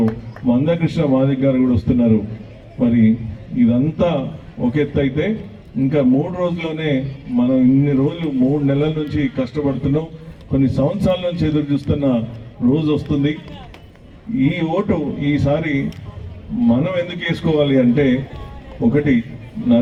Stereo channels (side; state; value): both; identical; correlation 1.00